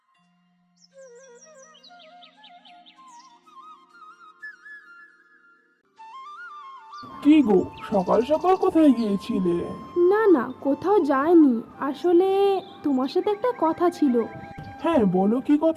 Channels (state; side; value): identical; both; correlation 1.00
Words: কি গো, সকাল সকাল কোথায় গিয়েছিলে? না না, কোথাও যায়নি। আসলে তোমার সাথে একটা কথা ছিল। হ্যাঁ বলো, কি